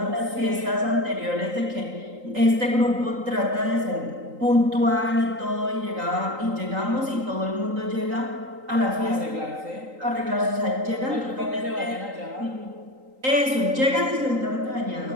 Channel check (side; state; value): left; late; 3.8 ms